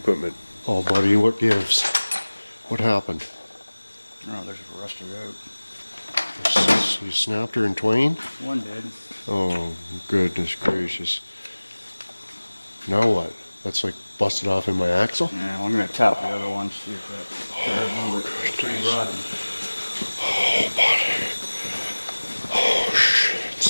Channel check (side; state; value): both; inverted; correlation -1.00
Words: Oh, buddy, what gives? What happened? Oh, there's a rusted out. You snapped her in twain? One did. Oh, goodness gracious. Now what? That's like busted off in my axle? Yeah, well, I'm going to tap the other one, see if that... pretty rotten. Oh, buddy. Oh,